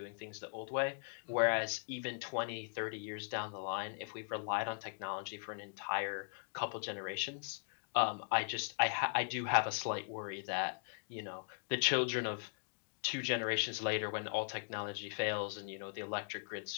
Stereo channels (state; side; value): silent; right; digital silence